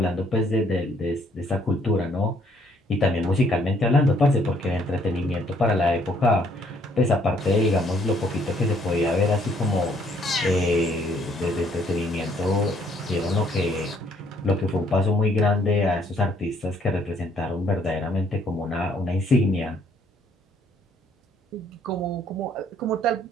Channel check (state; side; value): normal; both; correlation 0.65